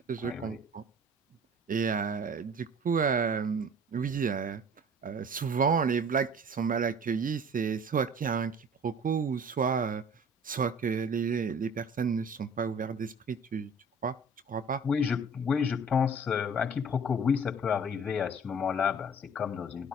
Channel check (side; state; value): both; normal; correlation 0.47